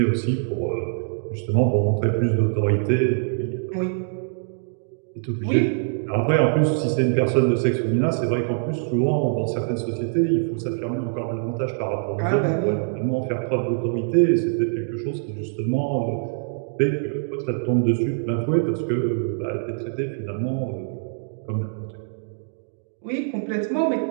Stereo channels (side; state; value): left; silent; digital silence